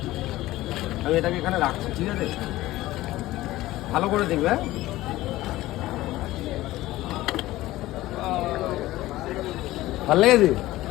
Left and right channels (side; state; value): right; quieter; 16.8 dB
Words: আমি এটাকে এখানে রাখছি, ঠিক আছে? ভালো করে দেখবে। হ্যাঁ, ভালো লেগেছে?